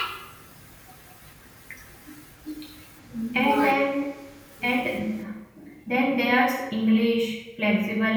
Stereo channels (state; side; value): identical; both; correlation 1.00